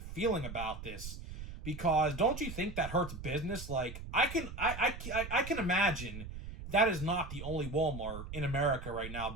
about this? Because don't you think that hurts business? Like, I can imagine that is not the only Walmart in America right now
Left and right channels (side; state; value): right; noise; rumble, 10 dB below the sound